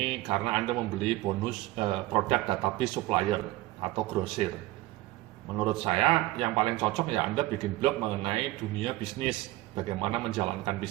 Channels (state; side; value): quieter; left; 17.7 dB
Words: karena Anda membeli bonus produk database supplier atau grosir. Menurut saya yang paling cocok ya Anda bikin blog mengenai dunia bisnis, bagaimana menjalankan